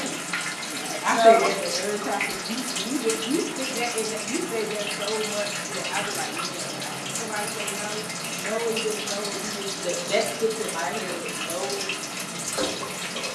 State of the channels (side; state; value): both; identical; correlation 1.00